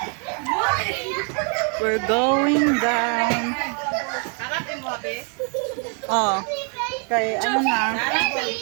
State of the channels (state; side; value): quieter; left; 39.6 dB